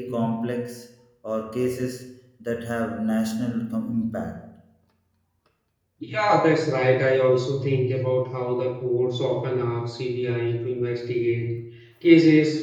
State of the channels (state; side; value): identical; both; correlation 1.00